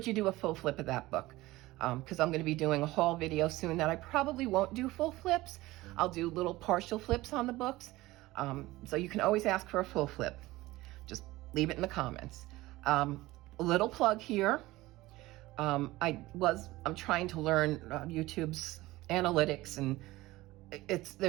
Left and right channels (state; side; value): quieter; left; 18.6 dB